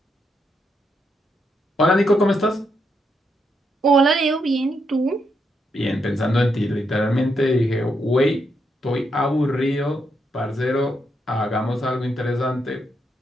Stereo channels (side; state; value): both; normal; correlation 0.80